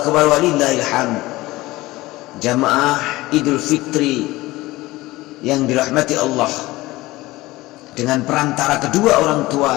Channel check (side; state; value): right; quieter; 19.1 dB